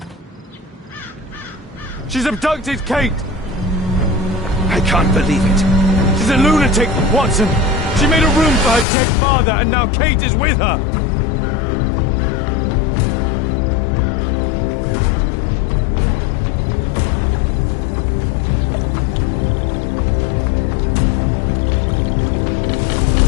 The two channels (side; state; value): right; drops out; at 8.8 s